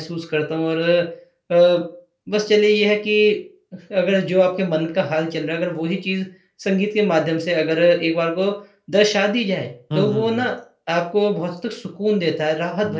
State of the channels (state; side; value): identical; both; correlation 1.00